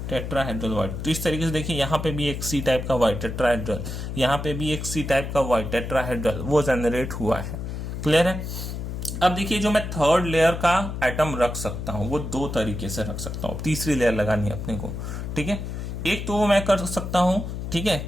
टेट्राहेड्रल वॉइड। तो इस तरीके से देखिए यहाँ पे भी एक सी टाइप का वॉइड टेट्राहेड्रल, यहाँ पे भी एक सी टाइप का वॉइड टेट्राहेड्रल वो जनरेट हुआ है, क्लियर है। अब देखिए जो मैं थर्ड लेयर का एटम रख सकता हूँ वो 2 तरीके से रख सकता हूँ, तीसरी लेयर लगानी है अपने को, ठीक है। एक तो मैं कर सकता हूं, ठीक है,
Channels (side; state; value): left; noise; hum, 6 dB below the sound